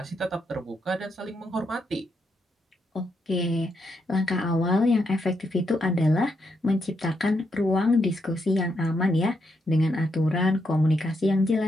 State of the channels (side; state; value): both; normal; correlation 0.80